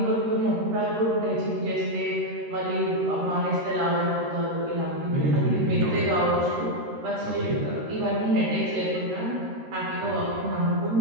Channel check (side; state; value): left; late; 13 ms